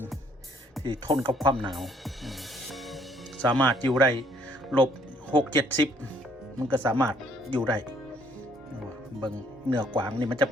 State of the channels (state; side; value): normal; both; correlation 0.65